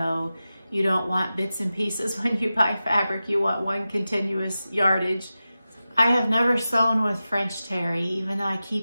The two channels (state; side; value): inverted; both; correlation -0.94